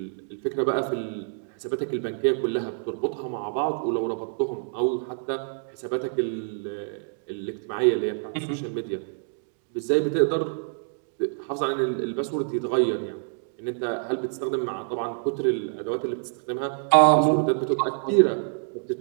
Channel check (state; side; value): silent; left; digital silence